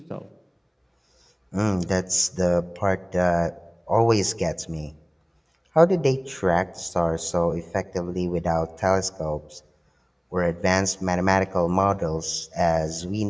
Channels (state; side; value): identical; both; correlation 1.00